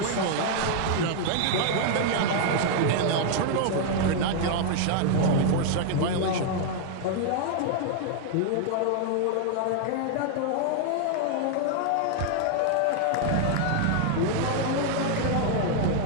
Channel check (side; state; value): both; different; correlation 0.00